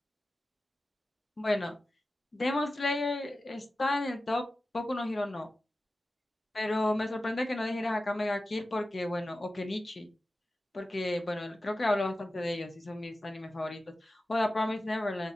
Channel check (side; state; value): both; normal; correlation 0.94